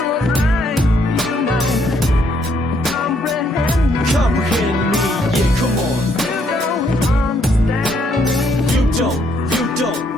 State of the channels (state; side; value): normal; both; correlation 0.70